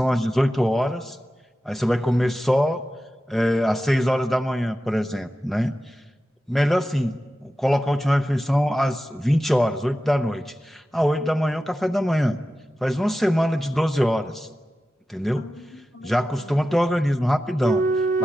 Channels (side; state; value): both; normal; correlation 0.93